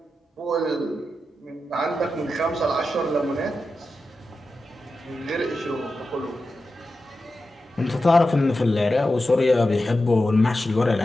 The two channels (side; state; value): both; normal; correlation 0.91